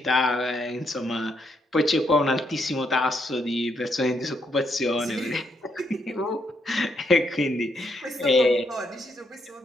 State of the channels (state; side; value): normal; both; correlation 0.76